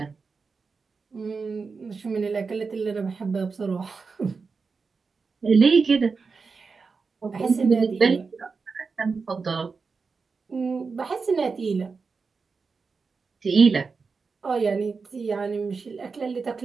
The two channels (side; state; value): left; quieter; 4.8 dB